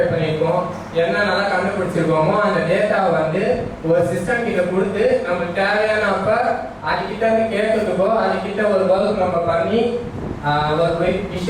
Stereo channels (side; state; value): both; identical; correlation 1.00